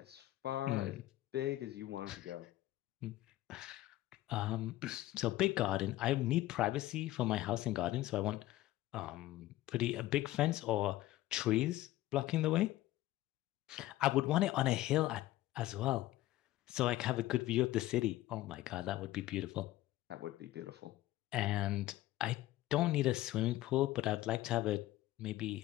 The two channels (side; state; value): right; quieter; 15.8 dB